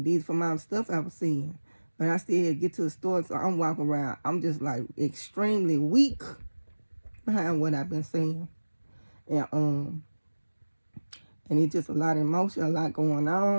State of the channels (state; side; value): inverted; both; correlation -1.00